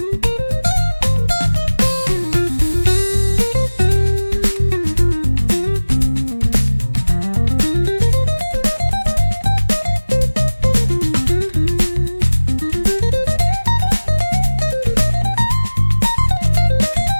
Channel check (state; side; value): inverted; both; correlation -1.00